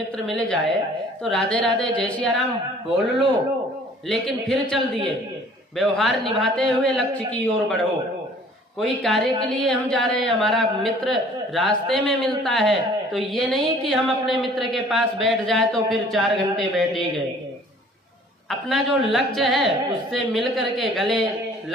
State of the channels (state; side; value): normal; both; correlation 0.53